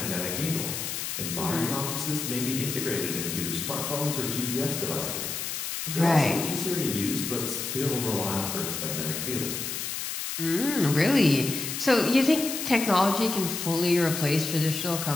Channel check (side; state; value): left; noise; hiss, 4 dB below the sound